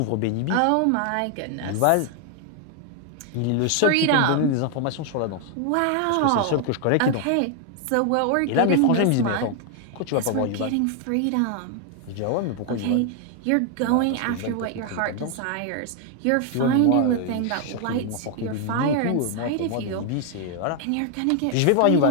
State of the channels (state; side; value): different; both; correlation 0.00